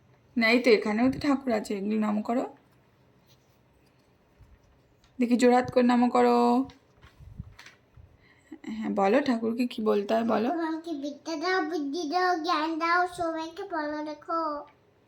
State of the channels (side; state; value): both; identical; correlation 1.00